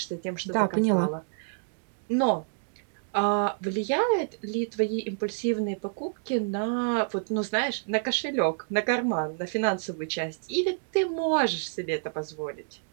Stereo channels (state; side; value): silent; left; digital silence